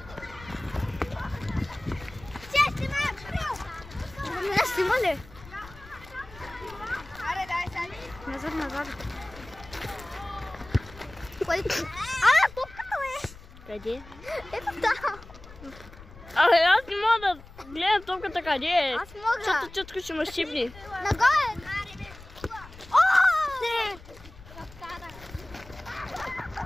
Снима ли? Назад, назад. Топката е! Къде? Ето там. Абе, аз не мога да гледам топката къде е. Аз мога. Защото чутко ще ме щипни. Нагоре!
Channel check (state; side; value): noise; left; rumble, 19 dB below the sound